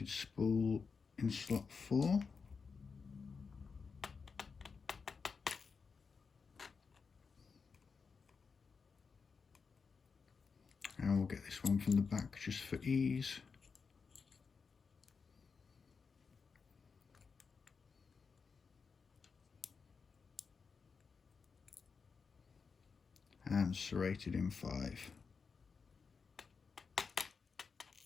spool in slot 4, and we'll get this one from the back just for ease. And serrated in 5.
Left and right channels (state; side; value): quieter; right; 5.3 dB